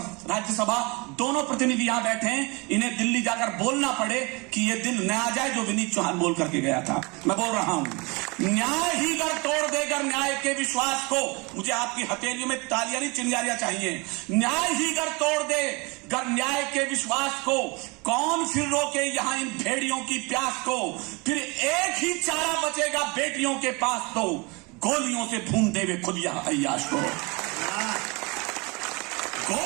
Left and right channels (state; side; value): quieter; left; 27.8 dB